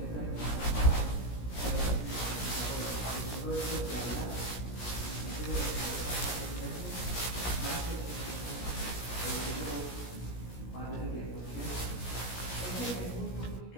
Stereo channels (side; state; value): right; late; 17 ms